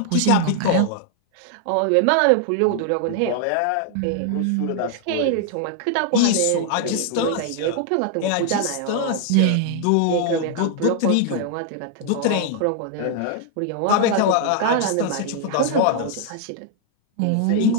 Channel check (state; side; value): different; both; correlation 0.00